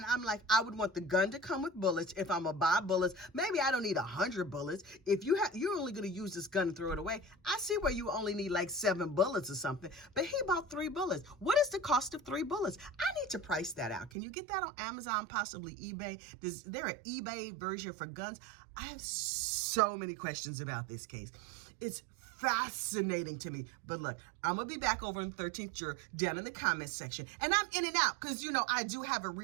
I'm like, I would want the gun to come with bullets. If I'm gonna buy bullets, maybe I don't need 100 bullets. If you're only gonna use this gun and throw it away, I see where you only need like 7 bullets or something, but he bought 3 bullets. What is the cost of 3 bullets? I need to price that out. Can you get that on Amazon, possibly eBay? Is there an eBay version for guns? I have so many questions about this case. It's fascinating to me. But look, I'm going to be back over in 13th Juror down in the comments section. And I'm in and out because, you know, I do have a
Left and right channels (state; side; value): drops out; left; at 14.1 s